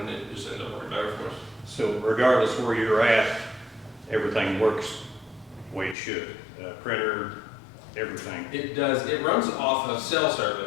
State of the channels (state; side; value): drops out; right; at 6.0 s